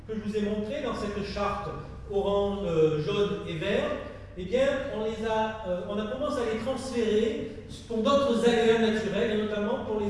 que je vous ai montrés dans cette charte orange, jaune et vert, eh bien, on a commencé à les transférer pour d'autres aléas naturels, et notamment pour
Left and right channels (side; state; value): both; identical; correlation 1.00